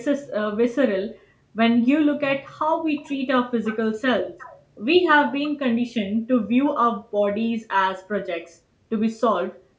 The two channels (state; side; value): identical; both; correlation 1.00